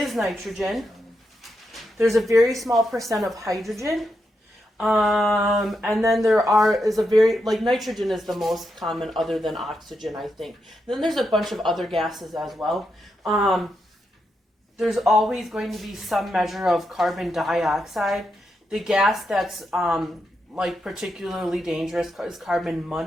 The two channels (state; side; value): normal; both; correlation 0.84